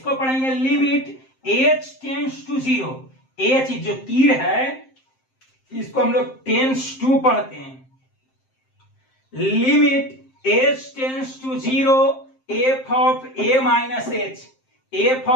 पढ़ेंगे limit h tends to 0, h जो तीर है इसको हम लोग टेंस टू पढ़ते हैं, limit h tends to 0 f of a minus h, f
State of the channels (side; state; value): right; late; 7.6 ms